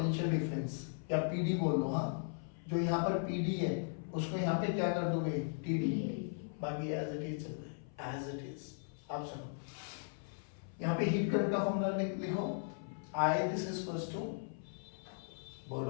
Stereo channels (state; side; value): silent; right; 53 dB below the other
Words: डिफरेंस, या PD बोल दो। हाँ जो यहाँ पर PD है उसको यहाँ पे क्या कर दोगे TD, बाकी एज इट इज चल रहा है एज इट इज। आप सुनो यहाँ पे हीट करंट का फॉर्मूला लिखो, I this is equals to